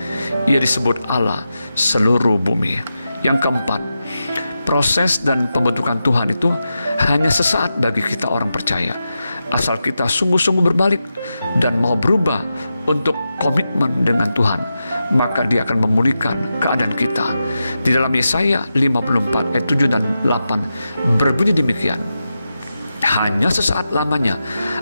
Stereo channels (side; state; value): both; inverted; correlation -0.90